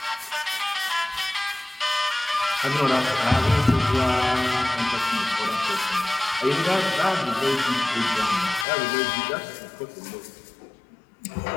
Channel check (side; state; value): right; drops out; at 8.7 s